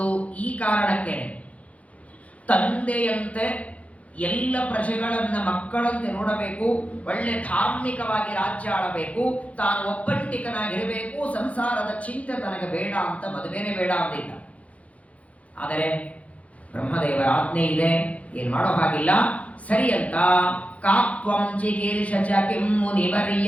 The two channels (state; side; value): late; right; 0.066 ms